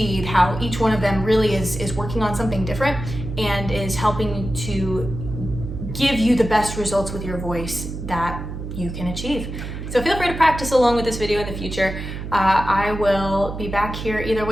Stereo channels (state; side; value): noise; right; hum, 7 dB below the sound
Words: how each one of them really is working on something different and is helping to give you the best results with your voice that you can achieve. So feel free to practice along with this video in the future. I will be back here either